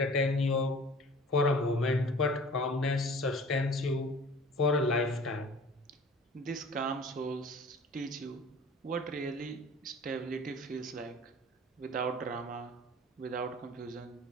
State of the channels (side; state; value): both; normal; correlation 0.45